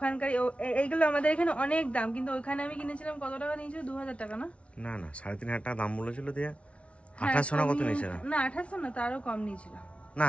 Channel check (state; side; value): late; right; 0.062 ms